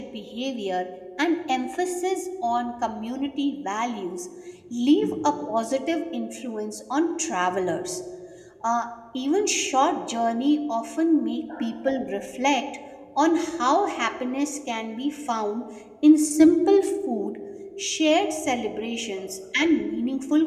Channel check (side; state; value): both; identical; correlation 1.00